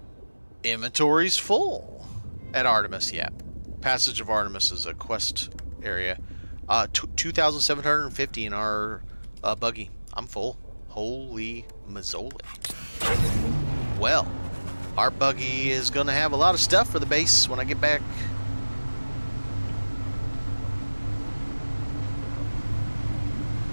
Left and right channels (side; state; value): both; inverted; correlation -1.00